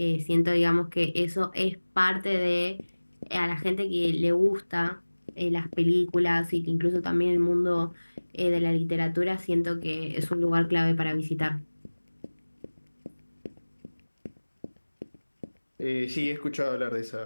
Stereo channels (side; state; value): both; inverted; correlation -1.00